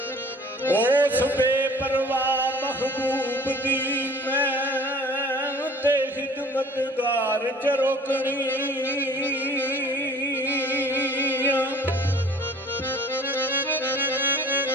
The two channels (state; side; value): normal; both; correlation 0.49